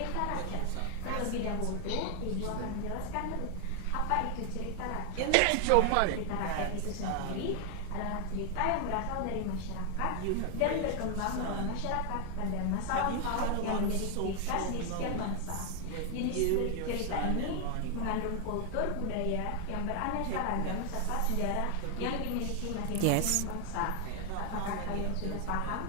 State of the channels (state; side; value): different; both; correlation 0.00